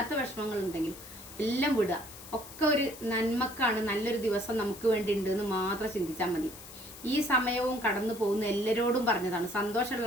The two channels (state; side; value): noise; left; hiss, 16 dB below the sound